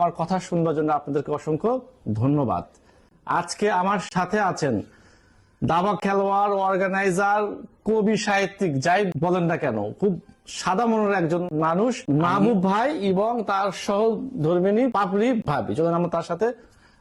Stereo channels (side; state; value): both; identical; correlation 1.00